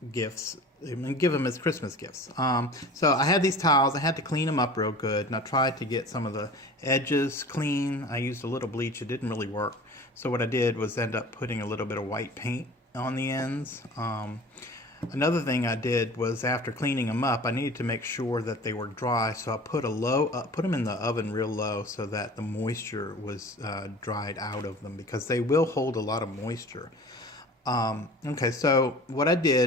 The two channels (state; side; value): normal; both; correlation 0.41